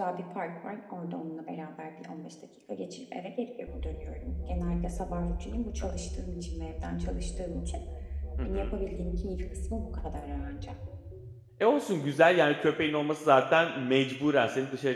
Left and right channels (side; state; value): both; identical; correlation 1.00